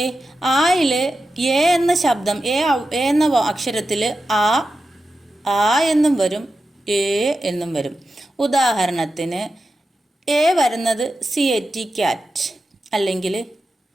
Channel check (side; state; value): both; normal; correlation 0.91